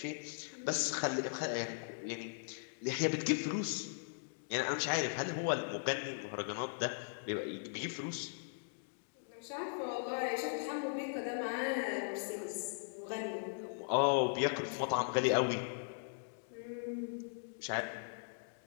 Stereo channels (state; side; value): silent; right; digital silence